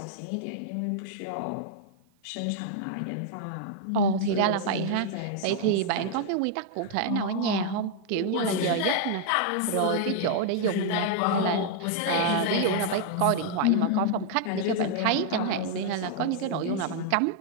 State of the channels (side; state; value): both; different; correlation 0.00